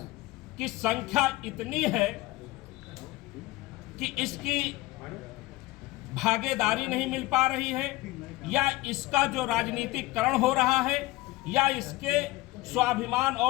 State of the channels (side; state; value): right; quieter; 19.1 dB